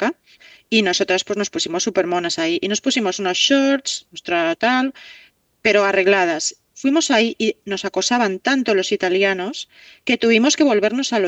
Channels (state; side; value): identical; both; correlation 1.00